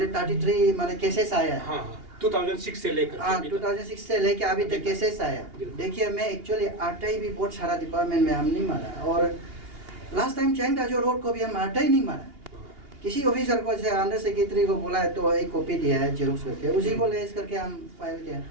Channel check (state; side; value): late; left; 2.8 ms